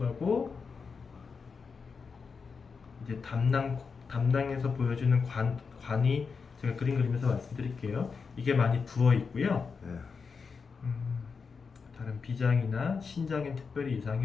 이제 담낭에서 보여주는 관이 제가 그림 그리면서 말씀드릴게요. 이게 많이 부어 있고요. 다른 비장이나 신장엔 특별히 이상이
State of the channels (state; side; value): quieter; right; 5.3 dB